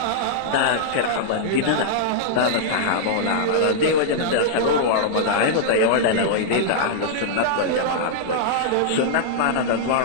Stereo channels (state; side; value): different; both; correlation -0.02